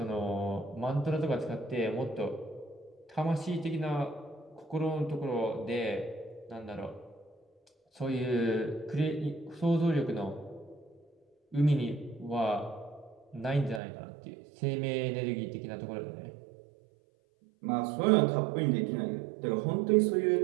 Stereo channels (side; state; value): left; drops out; at 13.8 s